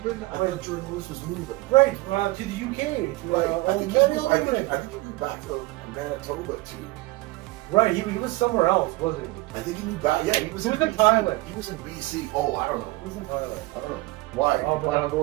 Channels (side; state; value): left; quieter; 21.2 dB